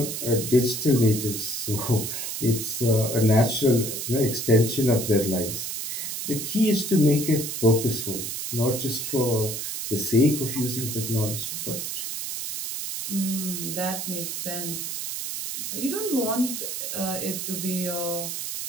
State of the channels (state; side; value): noise; right; hiss, 4 dB below the sound